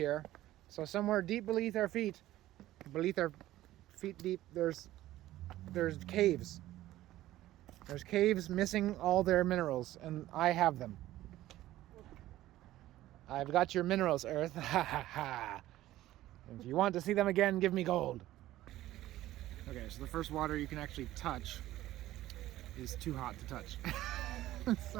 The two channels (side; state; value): left; quieter; 15.0 dB